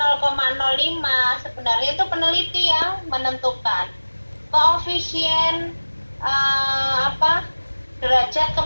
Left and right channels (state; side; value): inverted; both; correlation -1.00